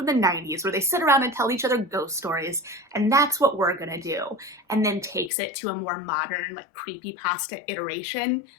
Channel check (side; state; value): right; drops out; at 5.3 s